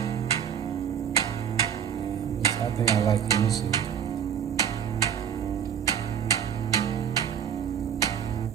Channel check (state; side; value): quieter; left; 8.5 dB